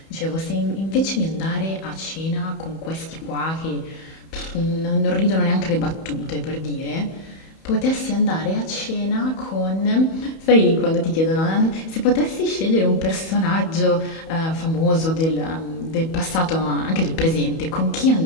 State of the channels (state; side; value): late; right; 31 ms